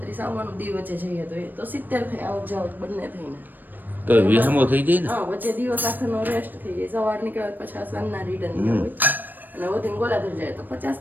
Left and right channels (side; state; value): left; late; 0.091 ms